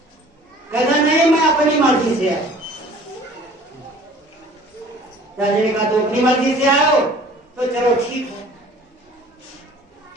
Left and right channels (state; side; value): normal; both; correlation 0.49